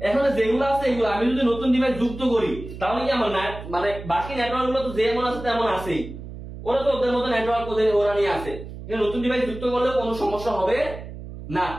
এখানে যেগুলো আছে এগুলো আমি যদি নতুন ডিভাইস যুক্ত করি, তাহলে কি আমার মানে বাকি নেটওয়ার্ক গুলো তো যেমন আছে তেমন আছেই, ওরা তো ওদের মতো নেটওয়ার্ক ওরা নিয়ে আছে, নতুন ডিভাইস যুক্ত করলে কোনো সমস্যা হবে না।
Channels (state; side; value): noise; right; hum, 12 dB below the sound